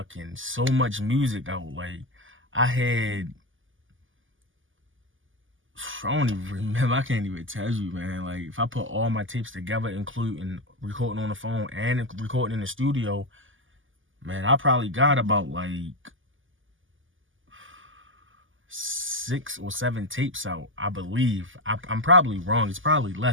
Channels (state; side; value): late; left; 0.58 ms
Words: so much music out. Like, I don't even remember. I can't even tell you, man. Like, if I put all my tapes together, including recording on the phone and recording in the studio, man, I probably got about like 6 or 7 tapes out, I believe. I'm probably wrong. It's probably